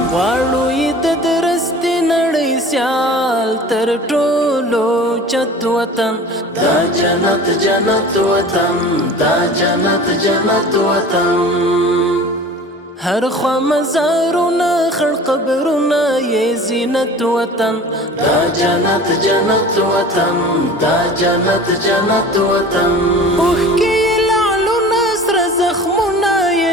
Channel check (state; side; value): normal; both; correlation 0.41